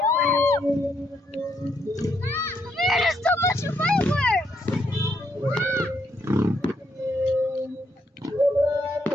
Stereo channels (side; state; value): both; normal; correlation 0.75